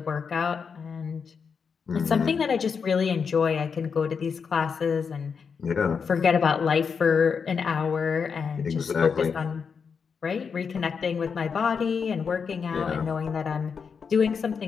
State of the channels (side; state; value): right; quieter; 6.0 dB